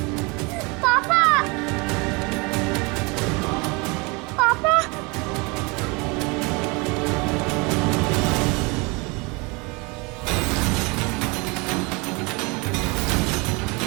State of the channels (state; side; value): quieter; left; 27.9 dB